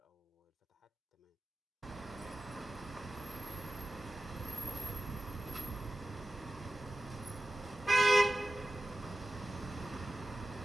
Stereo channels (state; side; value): normal; both; correlation 0.93